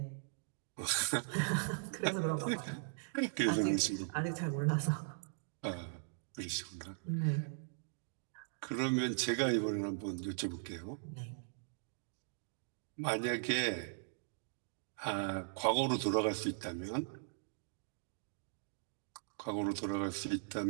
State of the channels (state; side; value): silent; left; digital silence